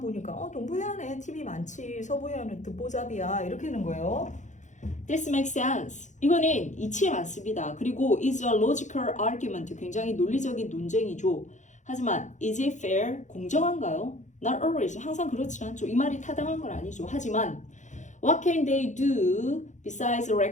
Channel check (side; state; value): right; late; 0.35 ms